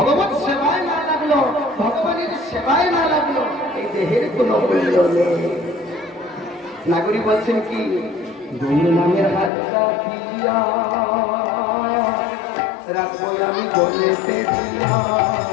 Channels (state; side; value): drops out; right; at 9.5 s